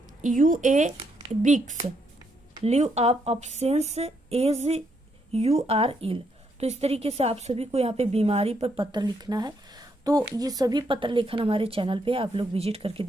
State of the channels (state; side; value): normal; both; correlation 0.76